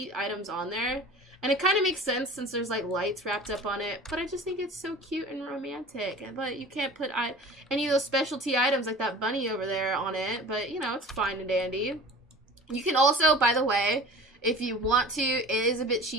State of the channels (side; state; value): both; normal; correlation 0.40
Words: items on there. And it kind of makes sense since there's like lights wrapped up on it, but I just think it's so cute and romantic. But you can't put any of those specialty items like that bunny over there on it, but you know, it's fine and dandy. You can also, by the way, if you want to, it is a bit